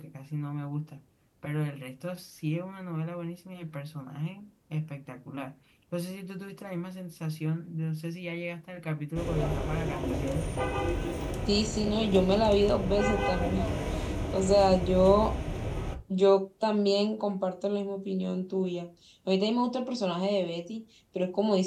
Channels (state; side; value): identical; both; correlation 1.00